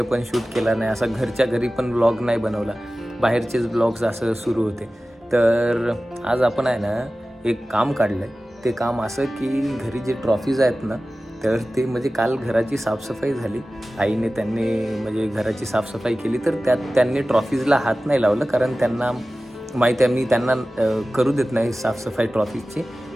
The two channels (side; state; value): both; normal; correlation 0.96